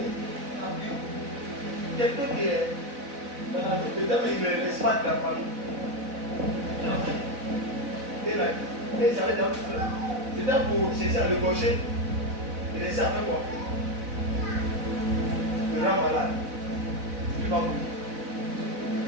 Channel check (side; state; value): left; late; 4.0 ms